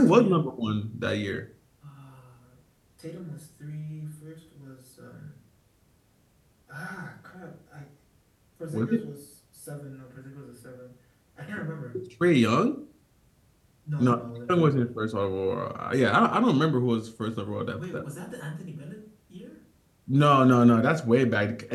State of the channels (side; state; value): both; identical; correlation 1.00